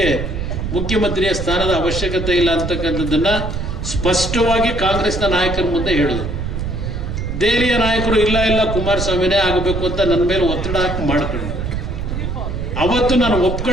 ಮುಖ್ಯಮಂತ್ರಿಯ ಸ್ಥಾನದ ಅವಶ್ಯಕತೆ ಇಲ್ಲ ಅಂತಕ್ಕಂಥದ್ದನ್ನ ಸ್ಪಷ್ಟವಾಗಿ ಕಾಂಗ್ರೆಸ್ನ ನಾಯಕರ ಮುಂದೆ ಹೇಳಿದ್ರು. ದೆಹಲಿಯ ನಾಯಕರು ಇಲ್ಲ ಕುಮಾರಸ್ವಾಮಿನೇ ಆಗಬೇಕು ಅಂತ ನನ್ನ ಮೇಲೆ ಒತ್ತಡ ಹಾಕಿ ಮಾಡ್ಕೊಂಡು, ಅವತ್ತು ನಾನು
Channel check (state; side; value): noise; right; rumble, 4 dB below the sound